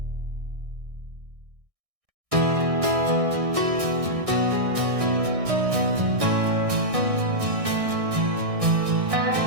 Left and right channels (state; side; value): late; left; 1.6 ms